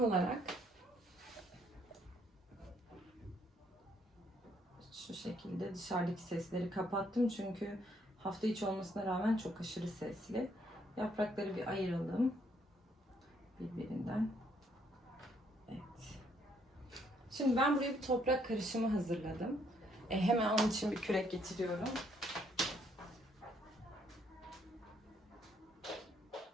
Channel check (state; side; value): normal; both; correlation 0.69